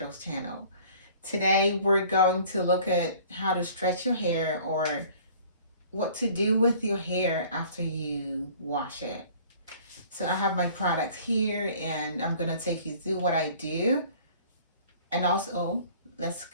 channel. Today we're going to look at how to stretch your hair or what to do with your hair after you wash it. So I have my products here and I'm going to take you through what I do and also let's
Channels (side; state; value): both; inverted; correlation -0.51